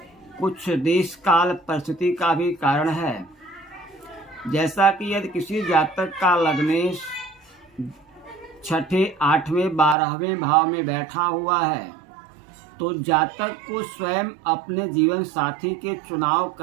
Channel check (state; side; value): drops out; left; at 10.0 s